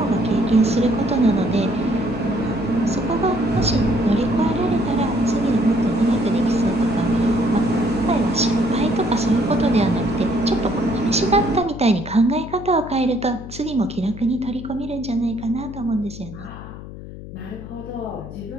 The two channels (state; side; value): noise; left; hum, 13 dB below the sound